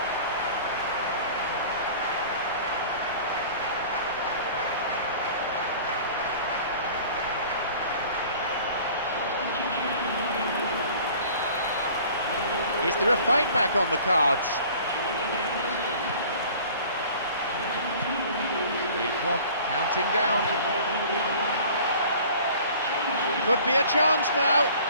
Is there a fight back on the cards? The clock counting down. Could be a chance now.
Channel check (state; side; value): inverted; both; correlation -0.47